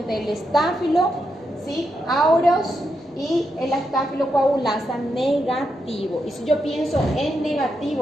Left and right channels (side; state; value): both; normal; correlation 0.83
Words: el estáfilo, ¿sí? Aureus y el estáfilo coagulasa negativo. Y si yo pienso en